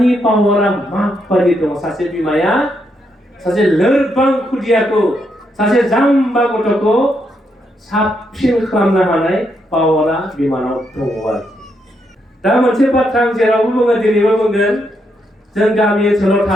पावारा माबायदि दङ। सासे बिमाया सासे लोरबां खुदियाखौ, सासे जाम्बा गथ'खौ साबसिन खालामनो हानाय पावारा बिमानाव दङ आरोखि। दा मोनसे बाथ्रा आं जेरावबो बुङो, दिनैबो बुंगोन, जों गामि ओनसोलाव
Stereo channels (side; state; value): both; normal; correlation 0.79